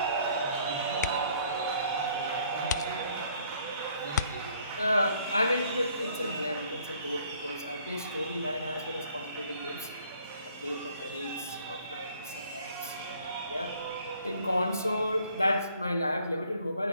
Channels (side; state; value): both; inverted; correlation -0.61